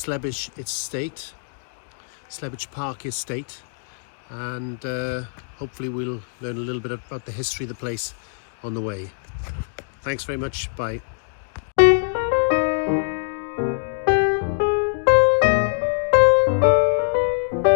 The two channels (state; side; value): silent; right; digital silence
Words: Estate, Slebech Park Estate. And hopefully we'll learn a little bit about the history of the place on the way. Thanks very much. Bye.